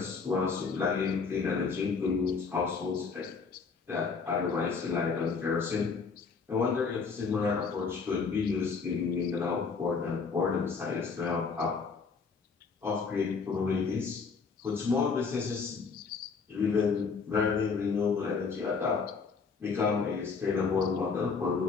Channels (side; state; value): right; quieter; 5.1 dB